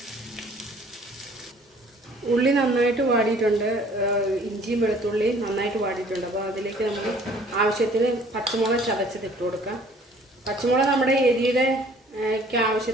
ഉള്ളി നന്നായിട്ട് വാടിയിട്ടുണ്ട്, ഇഞ്ചിയും വെളുത്തുള്ളിയും നന്നായിട്ട് വാടിയിട്ടുണ്ട്. അപ്പോൾ അതിലേക്ക് നമുക്ക് ആവശ്യത്തിന് പച്ചമുളക് ചതച്ചത് ഇട്ട് കൊടുക്കാം. പച്ചമുളക് നമ്മുടെ എരിയുടെ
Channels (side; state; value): both; normal; correlation 0.55